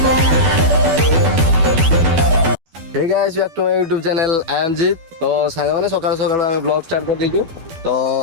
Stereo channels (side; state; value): left; late; 12 ms